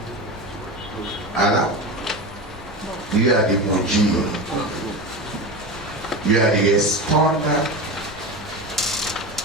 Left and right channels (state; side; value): normal; both; correlation 0.24